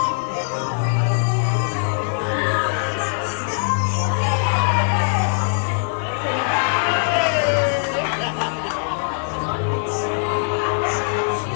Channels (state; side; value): silent; right; digital silence